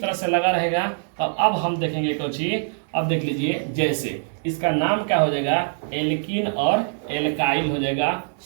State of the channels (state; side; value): silent; left; digital silence